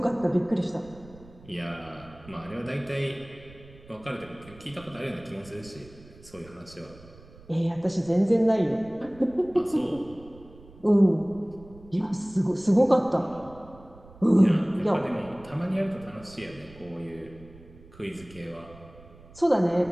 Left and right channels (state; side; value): noise; right; rumble, 21 dB below the sound